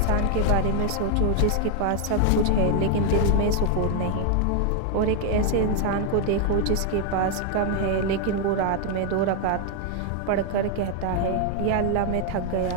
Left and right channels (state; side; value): different; both; correlation 0.00